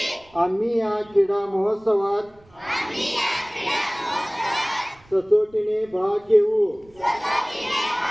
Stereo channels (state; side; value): noise; right; rumble, 29 dB below the sound